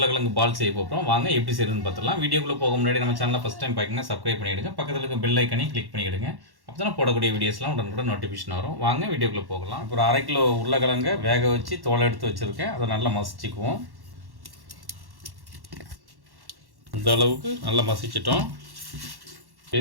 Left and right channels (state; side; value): late; left; 1.1 ms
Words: பால் செய்ய போகிறோம். வாங்க எப்படி செய்யுதுன்னு பார்த்துடலாம். வீடியோக்குள்ளே போக முன்னாடி நம்ம சேனலை ஃபஸ்ட் டைம் பார்க்குங்க, சப்ஸ்கிரைப் பண்ணிவிடுங்க. பக்கத்தில் இருக்க பெல் ஐக்கனையும் கிளிக் பண்ணிவிடுங்க. அப்போ தான் போடக்கூடிய வீடியோஸ்லாம் உடனுக்குடன் நோட்டிஃபிகேஷன் வரும். வாங்க வீடியோக்குள்ளே போகலாம். இப்போ ஒரு 1/2 கிலோ உருளைக்கிழங்கை வேக வச்சு தோலை எடுத்து வச்சுருக்கேன். அதை நல்லா மசிச்சுக்குவோம். இந்த அளவுக்கு நல்லா மசிச்சிட்டோம்.